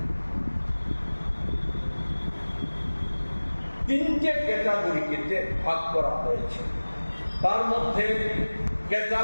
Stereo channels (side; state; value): both; inverted; correlation -1.00